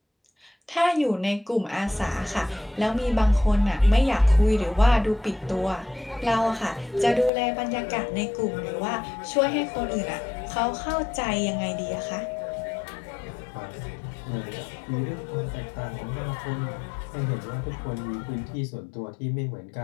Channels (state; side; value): drops out; right; at 7.3 s